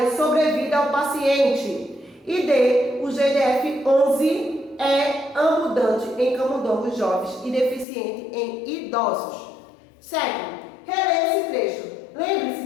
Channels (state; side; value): drops out; right; at 7.9 s